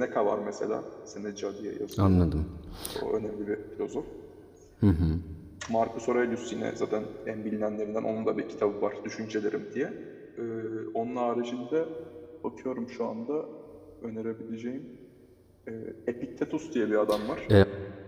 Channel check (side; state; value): both; identical; correlation 1.00